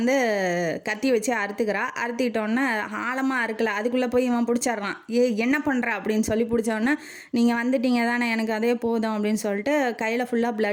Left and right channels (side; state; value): both; identical; correlation 1.00